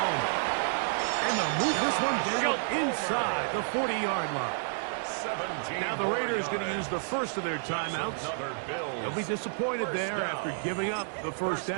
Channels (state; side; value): silent; left; 58 dB below the other